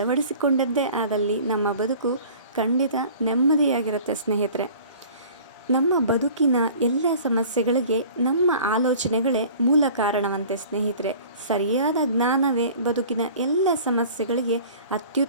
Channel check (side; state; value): both; inverted; correlation -0.46